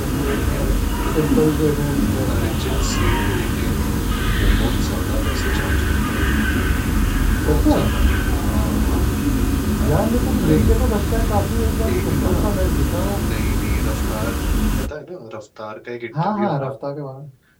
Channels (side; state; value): both; identical; correlation 1.00